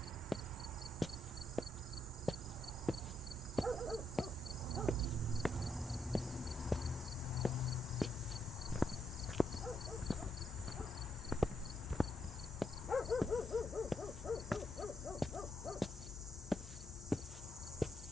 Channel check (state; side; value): normal; both; correlation 0.80